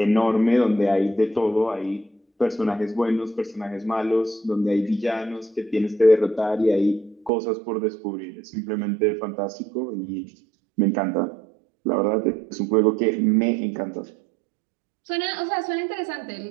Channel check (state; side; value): drops out; left; at 7.3 s